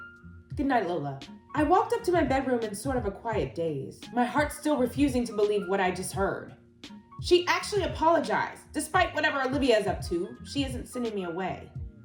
Good night, Lola. I walked up to my bedroom in sort of a quiet daze, my heart still refusing to believe what I just heard. She actually apologized. Despite whatever Olivia is up to, she isn't sending me away.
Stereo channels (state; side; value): identical; both; correlation 1.00